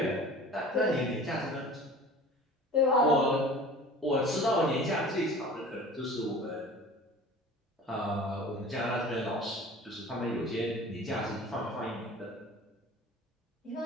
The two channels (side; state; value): both; normal; correlation 0.42